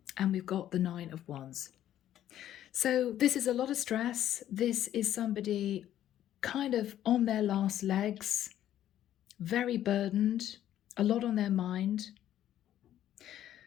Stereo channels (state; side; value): quieter; right; 11.8 dB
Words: and we've got the 9 of Wands. So this is a lot of stress. This is somebody kind of on their last legs, very burdened, a lot on their mind.